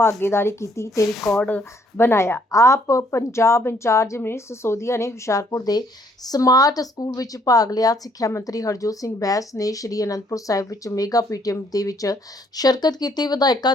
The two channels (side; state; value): both; normal; correlation 0.66